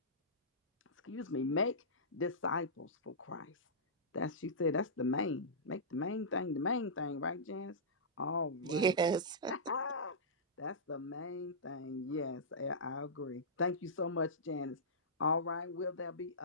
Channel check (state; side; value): normal; both; correlation -0.16